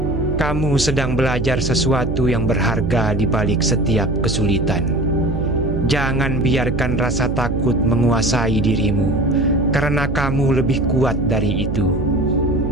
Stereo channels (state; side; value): noise; right; hum, 3 dB below the sound